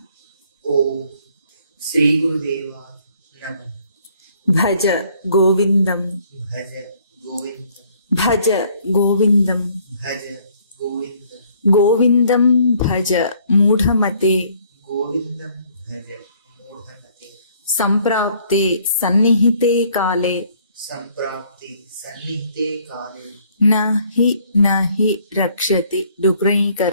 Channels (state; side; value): inverted; both; correlation -0.62